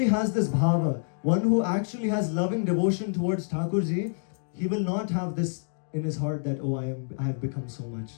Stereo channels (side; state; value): right; silent; digital silence